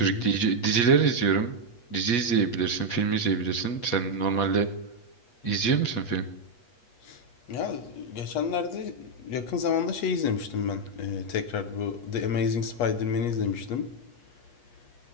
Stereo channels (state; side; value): late; right; 8.3 ms